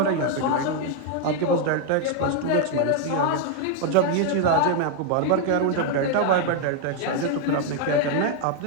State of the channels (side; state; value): both; different; correlation 0.01